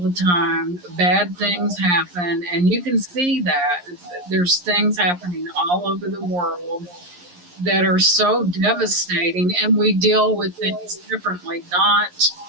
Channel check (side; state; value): left; late; 11 ms